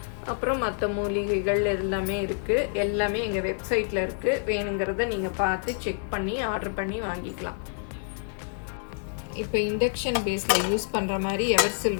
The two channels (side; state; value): right; silent; digital silence